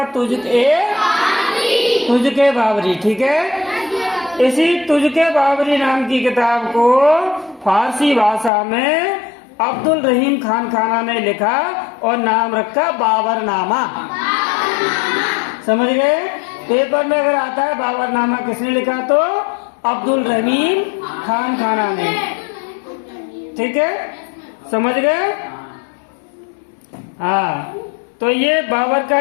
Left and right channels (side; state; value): right; drops out; at 8.5 s